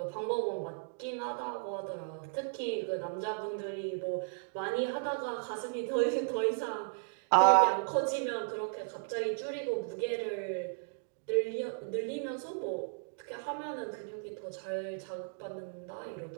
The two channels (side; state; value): left; silent; digital silence